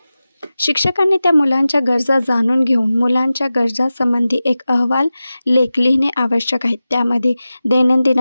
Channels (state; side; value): inverted; both; correlation -0.95